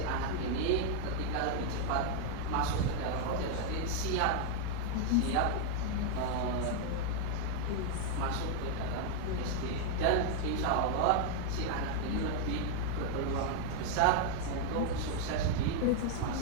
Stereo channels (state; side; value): different; both; correlation 0.00